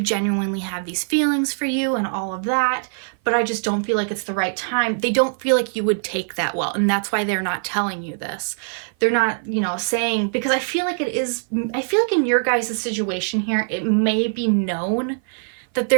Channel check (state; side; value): silent; left; 56 dB below the other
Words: have these feelings for you and all of that, but I just don't feel like it's the right time. They don't feel like you would take that well. And that's why they're not telling you this. They're not, saying, because I feel like in your guys' situation here, it may be known that